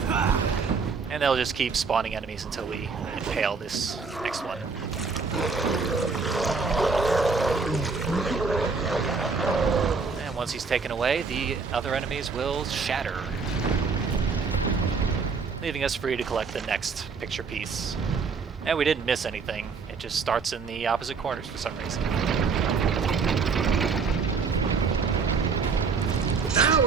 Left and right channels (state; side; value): quieter; left; 4.9 dB